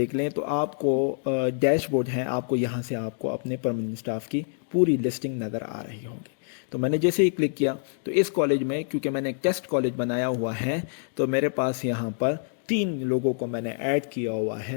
लें तो आपको डैशबोर्ड है, आपको यहाँ से आपको अपने परमानेंट स्टाफ की पूरी लिस्टिंग नज़र आ रही होगी। तो मैंने जैसे ही क्लिक किया तो इस कॉलेज में, क्योंकि मैंने एक टेस्ट कॉलेज बनाया हुआ है, तो मेरे पास यहाँ पर 3 लोगों को मैंने ऐड किया हुआ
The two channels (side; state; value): right; silent; digital silence